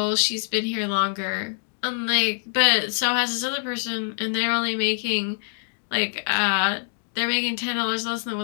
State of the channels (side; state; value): right; silent; digital silence